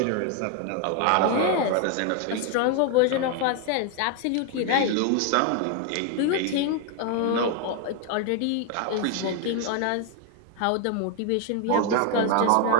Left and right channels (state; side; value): different; both; correlation 0.01